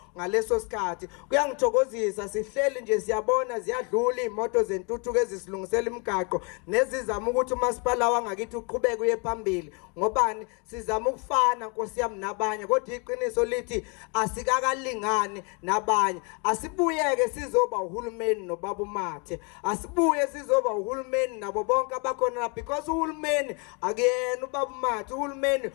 ngaleso sikhathi kuyangithokozisa sihleli nje siyabona ziyadlula imoto zentuthuko ezisilungisela imigaqo nezizama ukuthi umasipala wangakithi uqhubeke uye phambili ngobani sizama ukufana Nkosi yami nabanye kodwa iqiniso lithi asikakalingani nabanye asibuyeke sizoba uhulumeni nobaba uMathe asibuye sizoba uhulumeni nabo bonke abakhona because uhulumeni akuyena ubaba uhulumeni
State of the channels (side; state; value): right; quieter; 33.5 dB